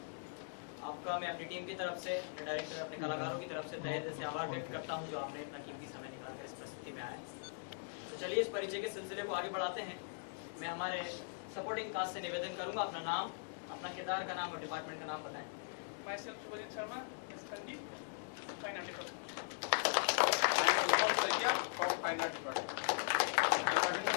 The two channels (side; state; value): right; silent; digital silence